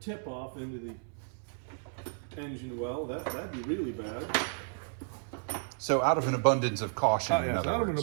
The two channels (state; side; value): silent; left; 56 dB below the other